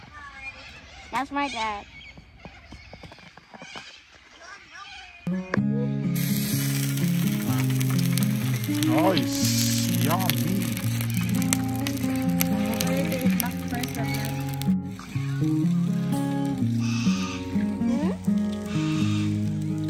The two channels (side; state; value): both; identical; correlation 1.00